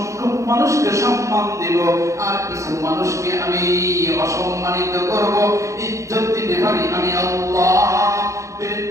মানুষকে সম্মান দেব আর কিছু মানুষকে আমি অসম্মানিত করব। ইজ্জত দিতে পারি আমি আল্লাহ,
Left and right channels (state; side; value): late; left; 0.15 ms